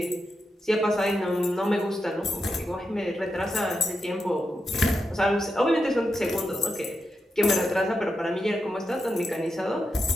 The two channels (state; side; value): normal; both; correlation 0.87